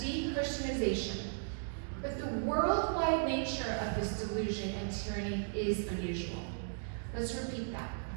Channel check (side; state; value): left; silent; digital silence